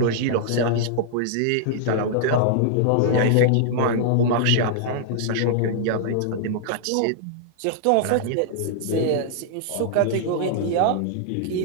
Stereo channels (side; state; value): both; different; correlation -0.01